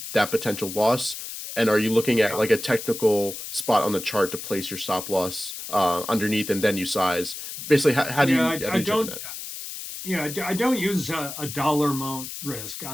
potential loss? And are you looking at like a technical spot on the chart to place your stop loss underneath, and then you size? Basically, how do you? I don't. Yeah, I don't use a dollar amount risk.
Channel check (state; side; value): noise; left; hiss, 9 dB below the sound